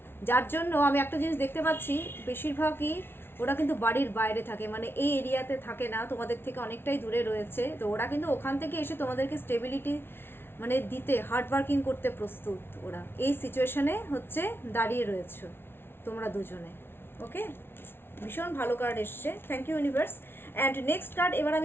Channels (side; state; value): right; late; 0.11 ms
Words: যার জন্য আমি একটা জিনিস দেখতে পাচ্ছি, বেশিরভাগই ওরা কিন্তু বাড়ির বাইরে থাকে, মানে এই এরিয়াতে থাকে না, তোমাদের থেকে অনেকটাই দূরে রয়েছে, তো ওরা কিন্তু ওখান থেকে এসে তোমাদেরকে স্টেবিলিটি মানে দিতে হার্ড ওয়ার্কিং করতে প্রস্তুত। ওরা এই সিচুয়েশনে হচ্ছে দাঁড়িয়ে রয়েছে তোমরা দুজনে। ওকে, ভীষণ ভালো কার্ড এসছে, thank you universe. And next card এবার